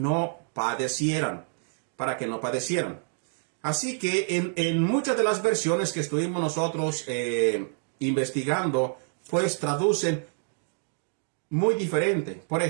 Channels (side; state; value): left; silent; 56 dB below the other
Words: padecieran, para que no padecieran. Así que en muchas de las versiones que estuvimos nosotros investigando, pues traducen muy diferente. Por